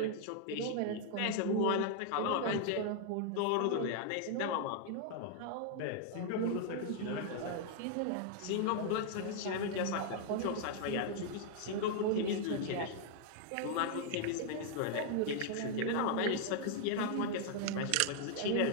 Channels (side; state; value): both; different; correlation 0.00